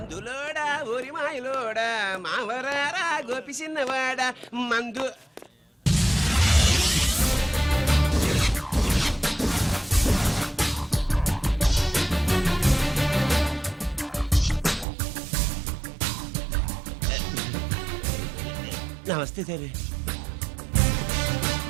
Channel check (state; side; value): drops out; left; at 14.9 s